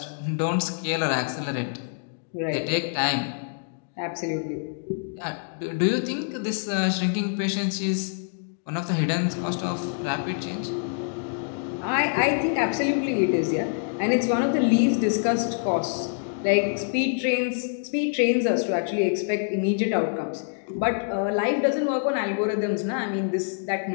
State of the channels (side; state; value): right; silent; digital silence